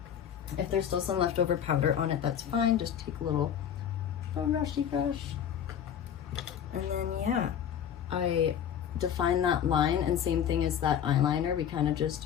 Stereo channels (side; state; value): right; quieter; 9.1 dB